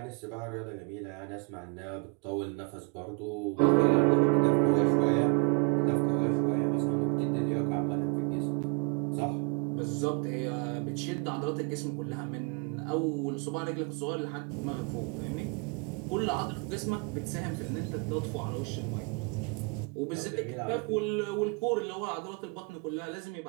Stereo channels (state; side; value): quieter; left; 33.2 dB